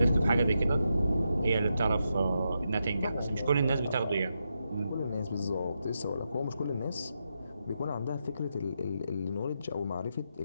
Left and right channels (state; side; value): inverted; both; correlation -0.84